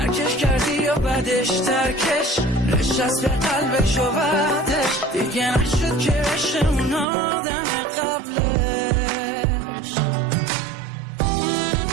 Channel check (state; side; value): drops out; left; at 7.1 s